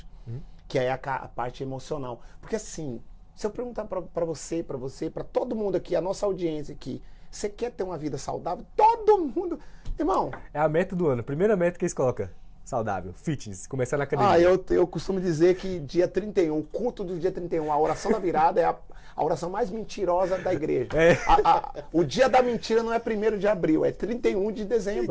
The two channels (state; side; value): identical; both; correlation 1.00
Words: que é a parte emocional. Porque assim, se eu perguntar para você, para todo mundo aqui, a nossa audiência aqui, você quer ter uma vida saudável? Todo mundo, irmão. É a meta do ano, primeira meta que eles colocam. Saudável, fitness, começar na academia. Eu costumo dizer que dia 31, o culto do dia 31, a oração da virada é a oração mais mentirosa da igreja. O dia da mentira não é 1º de abril, é 31 de